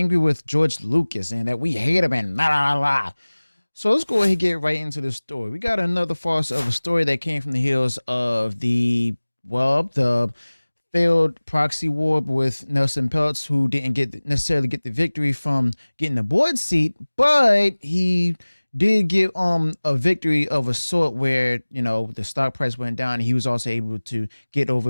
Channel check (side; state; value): both; inverted; correlation -1.00